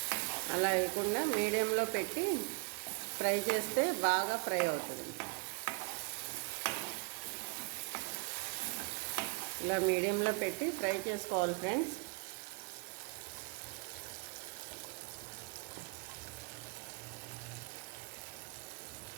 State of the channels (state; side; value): quieter; left; 29.1 dB